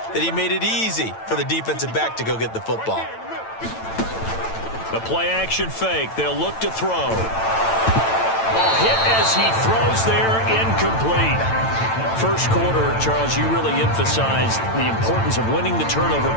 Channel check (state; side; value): late; right; 8.9 ms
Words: that he made it easy for the defensive back to go get the football. The play action fake. They'll look to throw. Ball hit as he throws there, incomplete. First quarter, Charles, you really emphasized the importance of winning the turnover